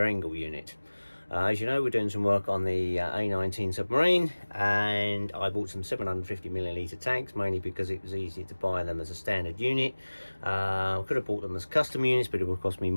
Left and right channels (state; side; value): inverted; both; correlation -1.00